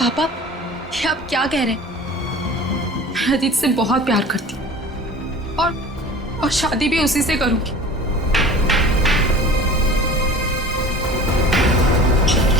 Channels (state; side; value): normal; both; correlation 0.41